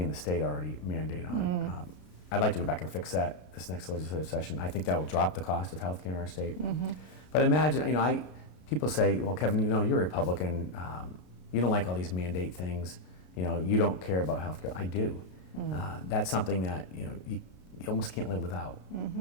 the state already mandate on. I'd like to go back and fix that this next legislative session. I think that will drop the cost of health care in our state. But imagine, you know, people say, well, Kevin, you know, you're a Republican. You don't like all these mandate things. You know, you don't care about health care. I do. That's something that, you know, you almost can't live without.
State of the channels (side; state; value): right; late; 33 ms